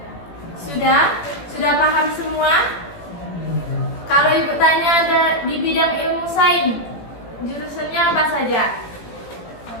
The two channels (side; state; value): right; late; 18 ms